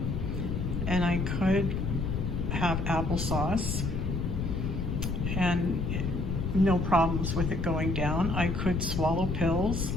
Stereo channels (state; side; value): noise; left; rumble, 1 dB below the sound